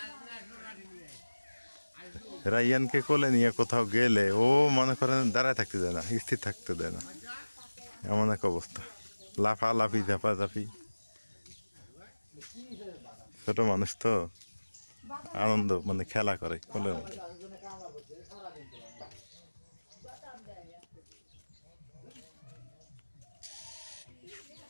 রাইয়ানকে কোলে নিয়ে কোথাও গেলে ও মনে করেন দাঁড়ায় থাকতে দেয় না, স্থির থাকতে দেয় না, এমন এক অবস্থা। লাফালাফি ঝাপাঝাপি, ছোট মানুষ তো আনন্দ মানে খেলা করে কোলের মধ্যে।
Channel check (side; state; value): both; inverted; correlation -1.00